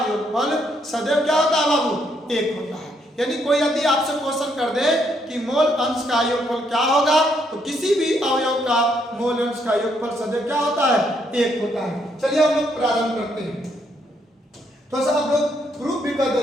योगफल सदैव क्या होता है बाबू एक होता है। यानी कोई यदि आपसे क्वेश्चन कर दे कि मोल अंश का योगफल क्या होगा, तो किसी भी अवयव का मोल अंश का योगफल सदैव क्या होता है एक होता है। चलिए हम लोग प्रारंभ करते हैं। तो सब लोग प्रूफ भी कर दे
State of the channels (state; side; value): normal; both; correlation 0.73